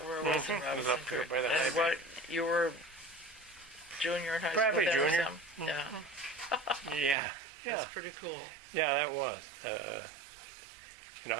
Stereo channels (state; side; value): drops out; left; at 7.2 s